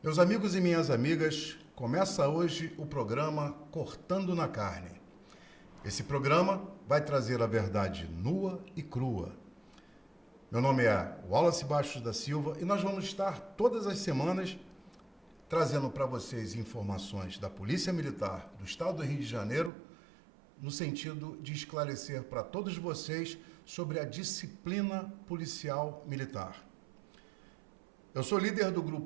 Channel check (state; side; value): drops out; left; at 19.7 s